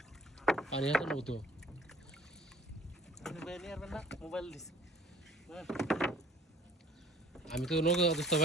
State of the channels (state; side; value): normal; both; correlation 0.52